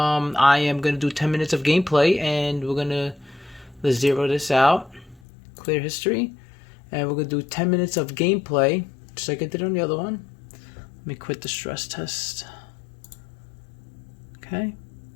am gonna do 10 minutes of gameplay, and let's zero this out, clear history, and we're gonna do 10 minutes of gameplay, just like I did on the other one. Let me quit the stress test. Okay.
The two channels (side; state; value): right; drops out; at 5.2 s